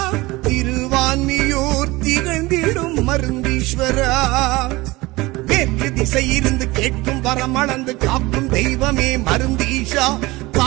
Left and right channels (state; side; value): quieter; left; 21.1 dB